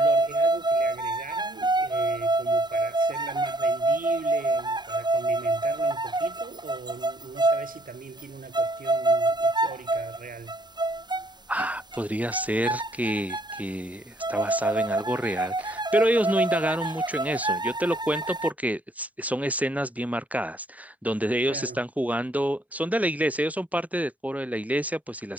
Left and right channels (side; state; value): both; normal; correlation 0.66